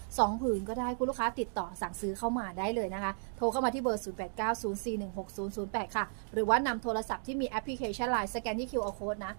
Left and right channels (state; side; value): silent; left; digital silence